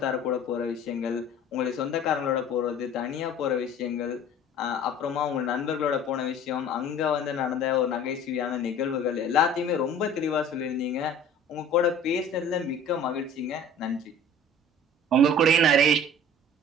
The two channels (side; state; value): both; normal; correlation 0.45